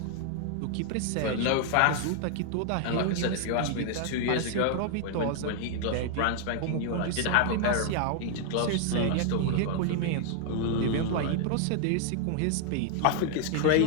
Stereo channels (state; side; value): different; both; correlation 0.00